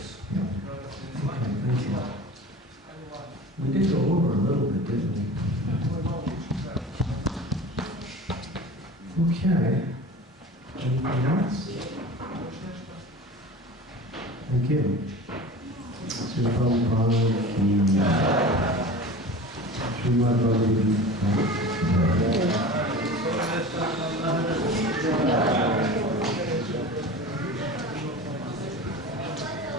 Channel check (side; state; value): both; normal; correlation 0.36